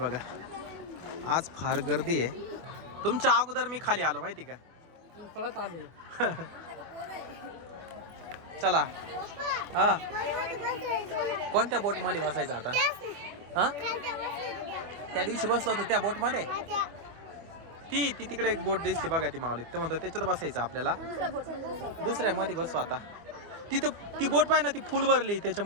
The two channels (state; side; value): late; left; 24 ms